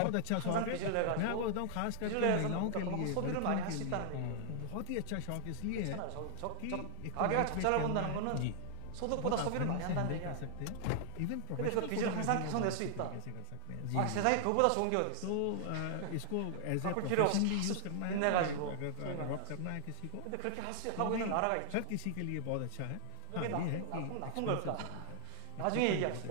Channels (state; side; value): different; both; correlation 0.00